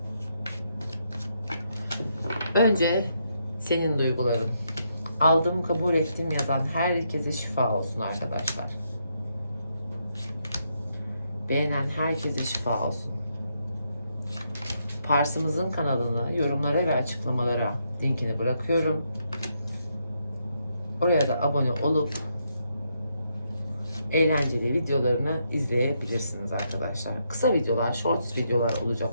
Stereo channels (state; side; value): inverted; both; correlation -0.78